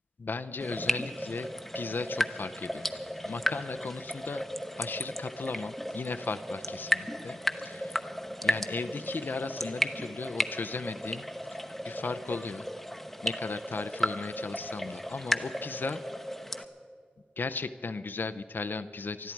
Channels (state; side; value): normal; both; correlation 0.85